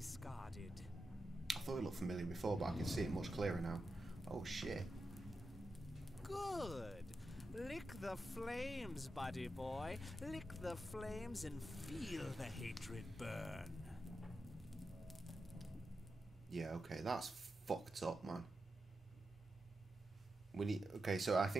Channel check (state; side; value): normal; both; correlation 0.89